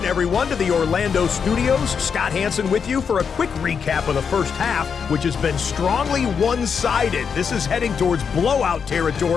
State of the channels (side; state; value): right; quieter; 6.5 dB